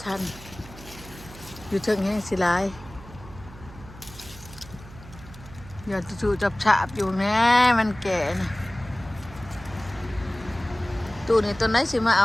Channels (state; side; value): noise; right; hum, 17 dB below the sound